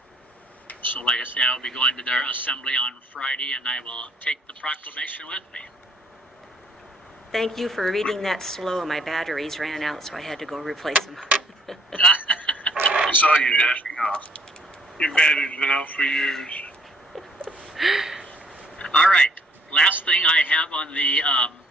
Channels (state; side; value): normal; both; correlation 0.62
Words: So like I say, I will be going to their assembly on Friday, and I will take the proclamation with me. Thank you for reading that slow. My batteries ran out, so I had to go replace them. I saw you dashing off. Your battery's been out for years. All right. Last thing I have on the